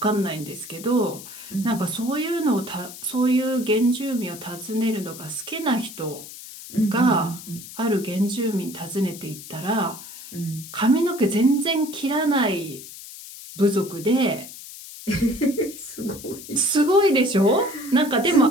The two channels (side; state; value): left; noise; hiss, 14 dB below the sound